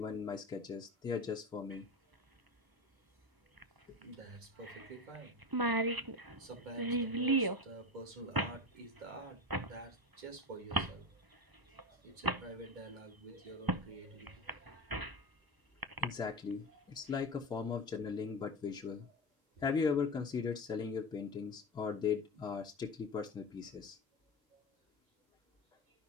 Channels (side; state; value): left; late; 1.0 ms